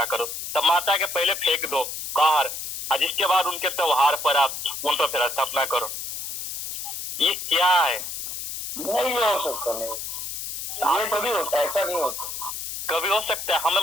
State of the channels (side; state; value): left; noise; hiss, 6 dB below the sound